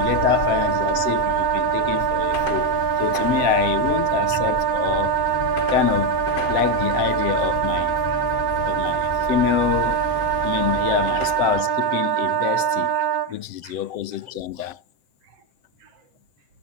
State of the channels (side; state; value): left; late; 7.7 ms